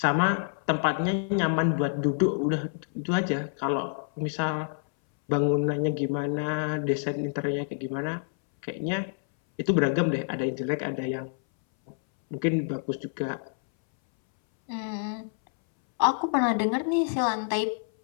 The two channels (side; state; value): right; silent; 60 dB below the other